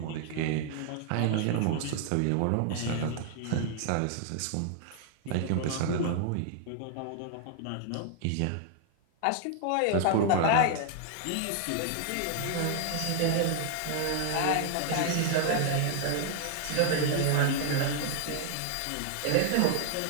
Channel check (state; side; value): different; both; correlation 0.00